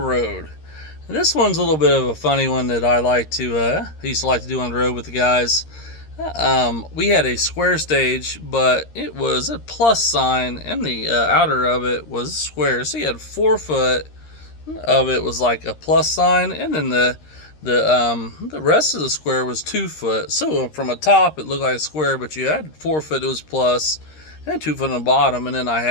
And this one's a little bit of a funny one that I used to like to do on the road with the guys. We had a square stage, but it was a plus sign, and the outer of it was square. So you had 4 foot of it was like a plus sign, and then the rest of the square was 2 foot. So from a top, it looked like a square, but you had 4 foot. It was plus, and 2 foot on the bottom, and then I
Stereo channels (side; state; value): right; late; 13 ms